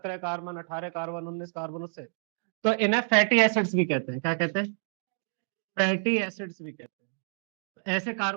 कार्बन, 18 कार्बन, 19 कार्बन, उससे तो इन्हें फैटी एसिड्स भी कहते हैं। क्या कहते हैं? फैटी एसिड्स भी कहते हैं। ऐसे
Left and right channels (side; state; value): left; silent; digital silence